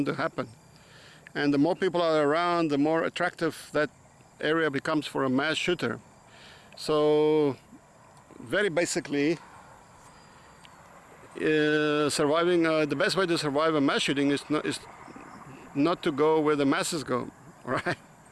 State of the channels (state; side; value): identical; both; correlation 1.00